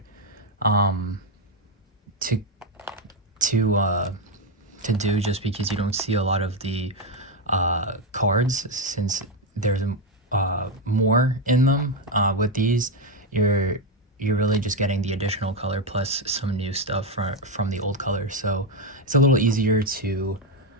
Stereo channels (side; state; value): both; normal; correlation 0.07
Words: to to do, just because you don't see a lot of the cards, since there's more in them. With these, you're really just getting the additional color plus some new stuff from the old color, so it's a little easier to